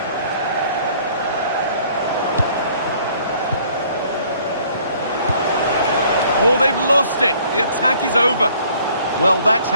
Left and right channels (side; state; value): both; inverted; correlation -0.58